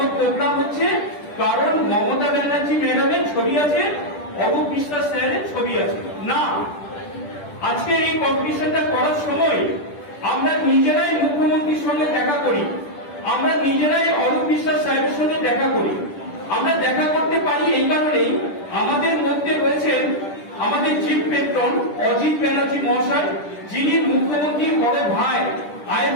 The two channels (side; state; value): right; late; 10 ms